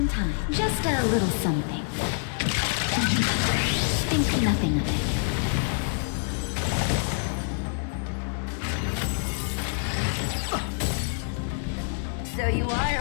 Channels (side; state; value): right; silent; 60 dB below the other